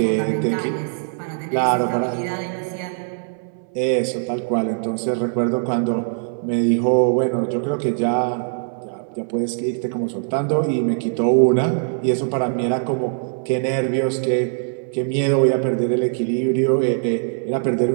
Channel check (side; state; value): left; silent; 65 dB below the other